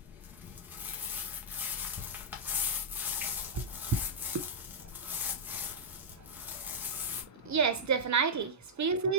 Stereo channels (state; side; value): normal; both; correlation -0.10